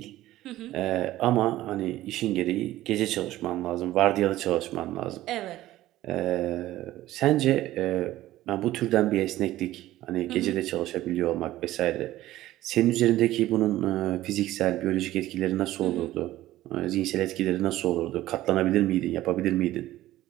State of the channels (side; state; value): left; quieter; 15.3 dB